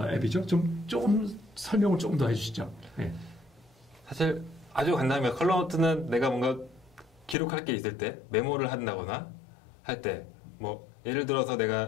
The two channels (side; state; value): right; drops out; at 7.4 s